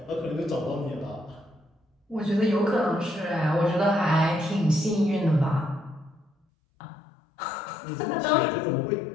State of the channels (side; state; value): right; drops out; at 6.3 s